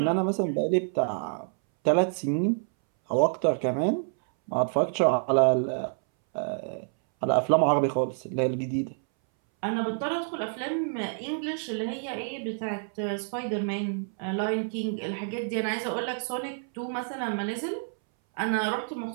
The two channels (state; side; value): silent; left; 59 dB below the other